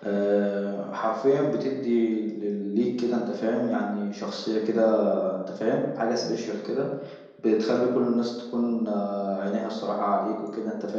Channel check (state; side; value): identical; both; correlation 1.00